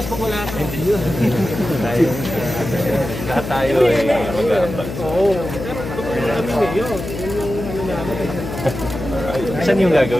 pag wala ka. Lahat tayo ay mag-aambag. Oo. Pero kami ngayon. Yun yung ano namin. Saan yung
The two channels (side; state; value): left; noise; hum, 8 dB below the sound